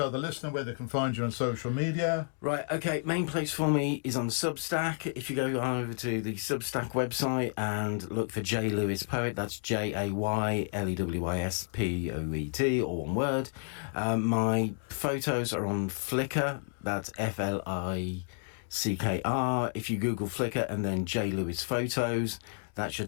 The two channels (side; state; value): right; silent; digital silence